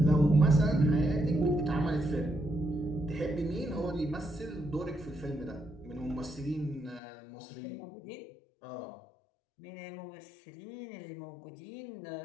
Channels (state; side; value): drops out; right; at 7.0 s